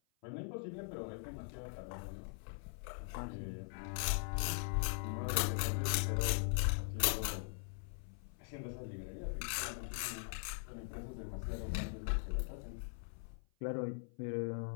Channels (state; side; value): silent; right; 50 dB below the other